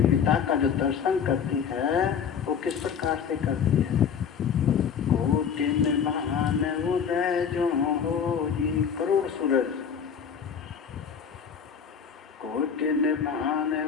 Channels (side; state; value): right; quieter; 7.2 dB